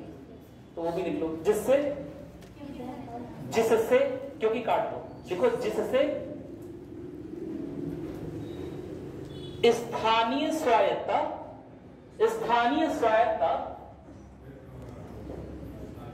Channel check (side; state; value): both; identical; correlation 1.00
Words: तो वो भी लिख लो, जिससे, क्योंकि काट दो, देखो, जिससे स्थानीय स्वायत्तता